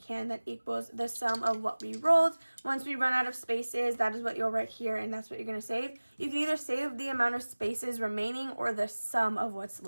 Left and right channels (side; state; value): both; inverted; correlation -1.00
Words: that equals the sum of what we rolled. Once we run out of spaces, that is what you'll write here, and that's what you're gonna save. You can either save the amount of spaces remaining or the sum of what's